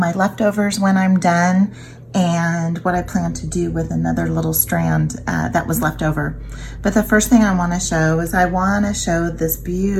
leftovers when I'm done and what I plan to do with another little strand that was left over. But the first thing I want to show is I want to show this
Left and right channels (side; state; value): both; identical; correlation 1.00